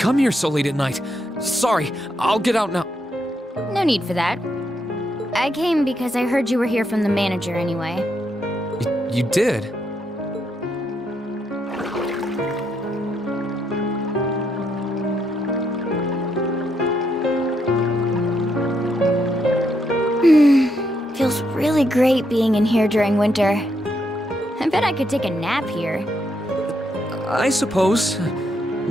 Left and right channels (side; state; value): both; normal; correlation 0.78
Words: here so late at night. Sorry, I'll get out now. No need for that. I came because I heard you were here from the manager anyway. You did? Feels really great being in here during winter. I bet I could take a nap here. I suppose.